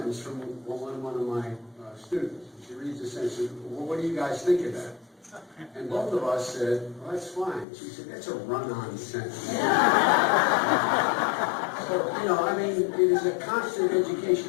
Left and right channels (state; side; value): drops out; right; at 7.7 s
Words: from one of my students. She reads the sentence. She said, well, what do you guys think of that? And both of us said, well, that's fine. She said, that's a run-on sentence. So, it is a constant